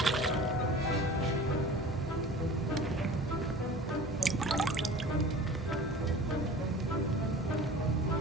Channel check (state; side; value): normal; both; correlation 0.40